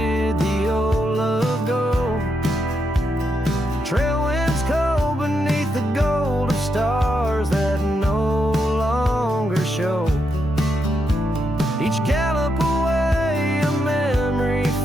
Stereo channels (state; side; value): normal; both; correlation 0.82